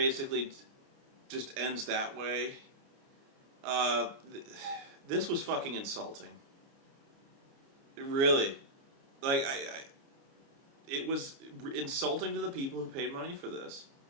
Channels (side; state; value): left; late; 29 ms